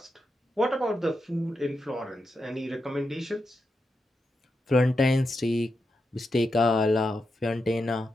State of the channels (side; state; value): both; normal; correlation 0.86